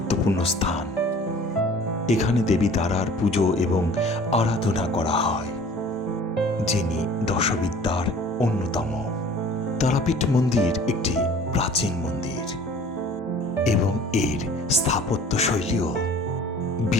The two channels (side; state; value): both; normal; correlation 0.47